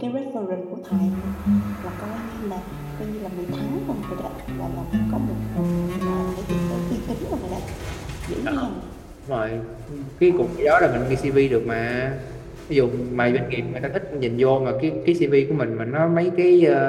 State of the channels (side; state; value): both; identical; correlation 1.00